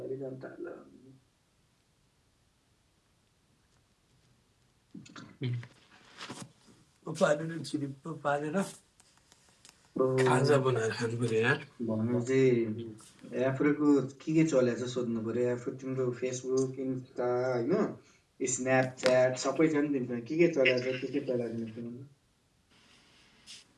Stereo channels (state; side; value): identical; both; correlation 1.00